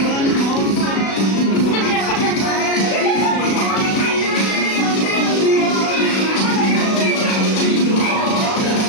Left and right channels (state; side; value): late; right; 36 ms